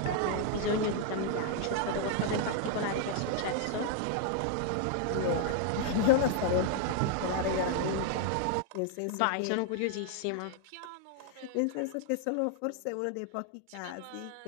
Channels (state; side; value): different; both; correlation 0.00